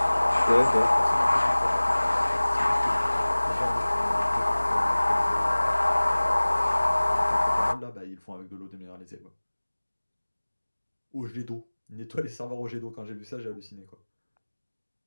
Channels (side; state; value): both; inverted; correlation -1.00